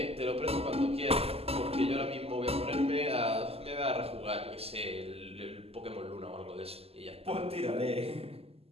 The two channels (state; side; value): late; left; 0.29 ms